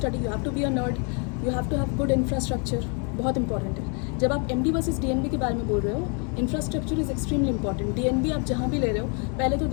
you have to be a nerd, you have to have good infrastructure, बहुत इंपॉर्टेंट है। जब आप MD वर्सेस DNB के बारे में बोल रहे हो, infrastructure is extremely important. DNB आप जहाँ भी ले रहे हो, पहले तो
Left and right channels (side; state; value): right; quieter; 37.0 dB